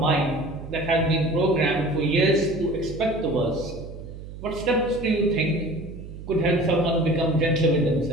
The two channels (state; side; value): noise; right; hum, 13 dB below the sound